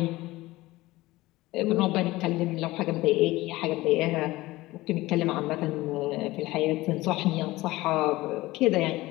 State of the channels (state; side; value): quieter; right; 18.8 dB